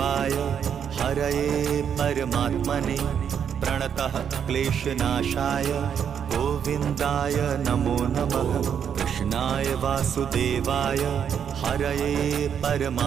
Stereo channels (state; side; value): quieter; left; 8.0 dB